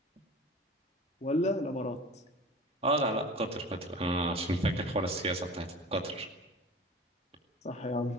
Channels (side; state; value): both; normal; correlation 0.38